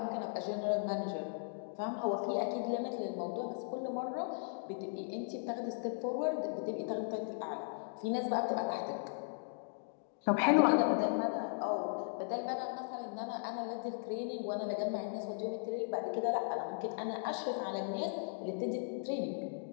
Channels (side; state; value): right; silent; digital silence